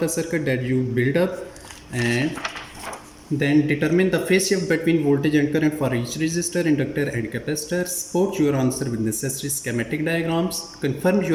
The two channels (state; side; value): identical; both; correlation 1.00